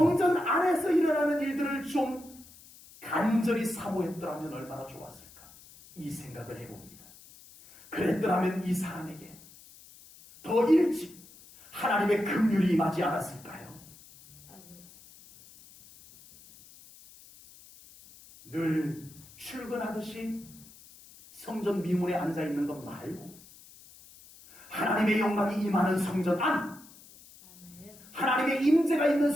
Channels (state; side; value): noise; left; hiss, 22 dB below the sound